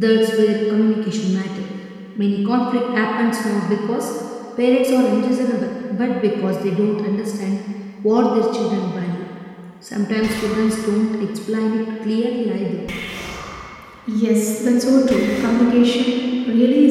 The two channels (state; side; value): identical; both; correlation 1.00